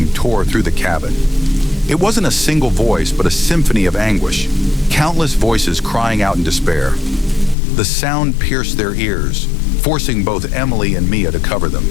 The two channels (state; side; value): drops out; right; at 7.6 s